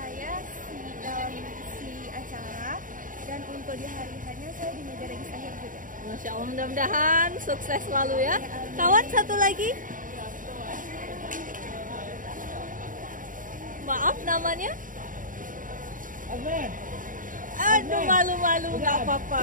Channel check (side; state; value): left; late; 0.39 ms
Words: si acara. Dan untuk di hari hanya saya di meja registrasi akhir juga. Masya Allah, mudah-mudahan sukses selalu ya. Kawan satu lagi. Maaf namanya? Aduh, malu-malu, nggak